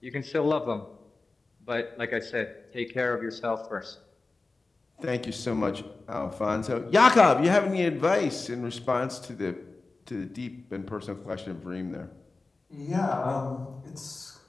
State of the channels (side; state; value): right; quieter; 3.5 dB